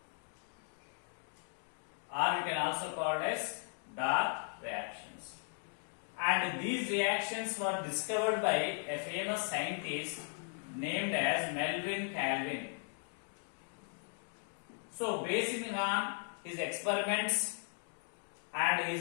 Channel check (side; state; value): right; silent; 53 dB below the other